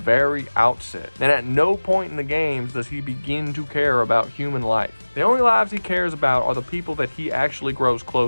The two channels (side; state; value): both; inverted; correlation -1.00